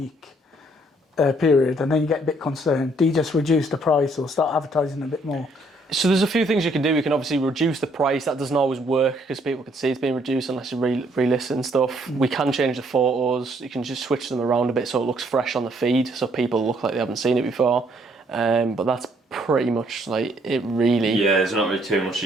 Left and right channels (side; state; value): both; normal; correlation 0.67